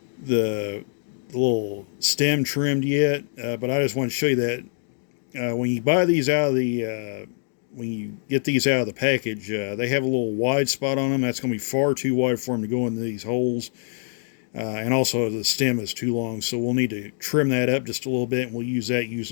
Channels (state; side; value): silent; right; digital silence